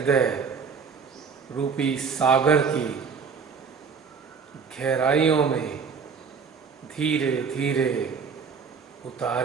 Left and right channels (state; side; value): quieter; left; 5.8 dB